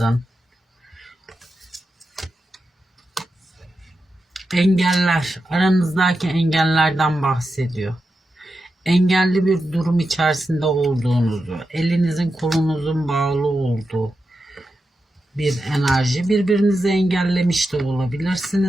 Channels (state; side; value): normal; both; correlation 0.89